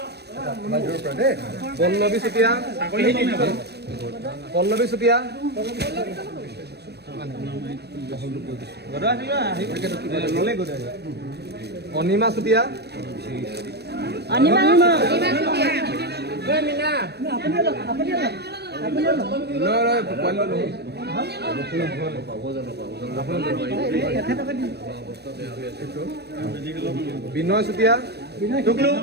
পল্লৱী চুতীয়া অনিমা চুতীয়া বিনয় চুতীয়া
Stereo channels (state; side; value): late; left; 0.48 ms